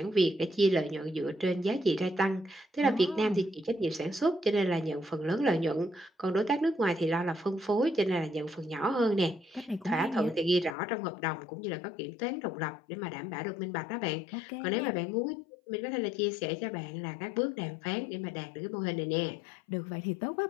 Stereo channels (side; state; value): right; drops out; at 10.8 s